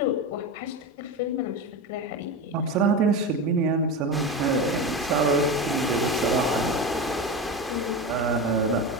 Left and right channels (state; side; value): normal; both; correlation 0.22